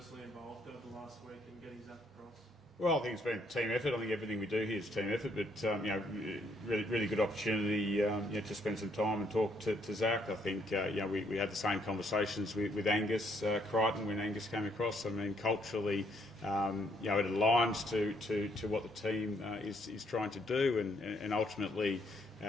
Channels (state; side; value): normal; both; correlation 0.70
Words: involved over the last week in getting Zac across? Well, I think it's been a team effort. I think everything we do here is team effort, but really good opportunity to spend some time and talk to Zac. I think we had the same conversations with Angus Crichton when Angus came across. I mean, culturally, it aligns to what the team is trying to do, and ultimately